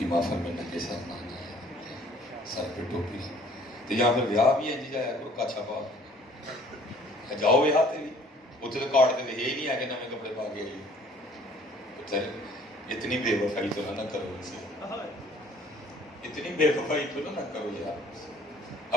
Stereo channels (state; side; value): normal; both; correlation 0.56